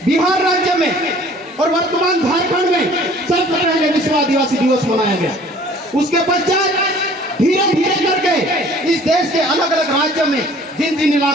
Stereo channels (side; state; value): both; normal; correlation 0.52